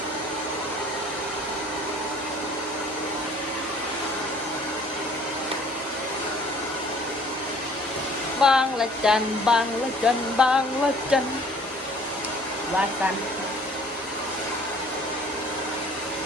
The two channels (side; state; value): both; normal; correlation 0.54